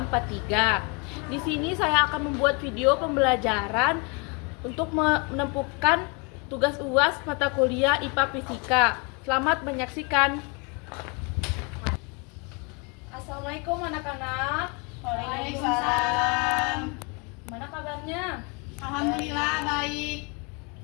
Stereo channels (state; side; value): quieter; right; 32.1 dB